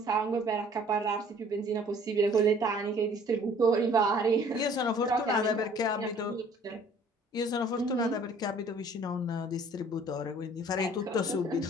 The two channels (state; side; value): normal; both; correlation 0.55